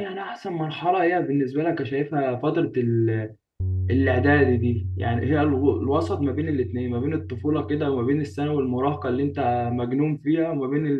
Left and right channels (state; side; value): identical; both; correlation 1.00